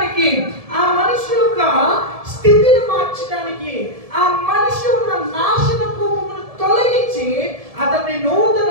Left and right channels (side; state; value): left; late; 1.7 ms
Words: ఆ మనిషి యొక్క స్థితిని మార్చడానికి, ఆ మనిషి ఉన్న నాశనపు తొలగించి అతన్ని నూతన